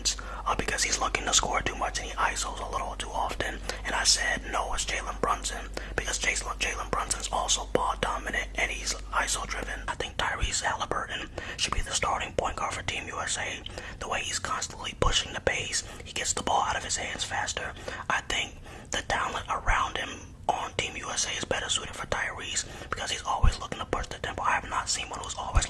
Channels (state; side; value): identical; both; correlation 1.00